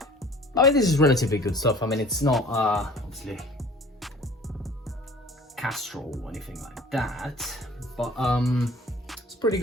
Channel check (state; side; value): normal; both; correlation 0.48